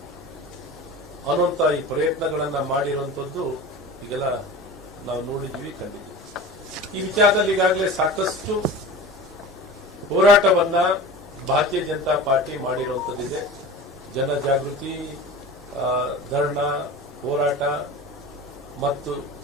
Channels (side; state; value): both; normal; correlation 0.34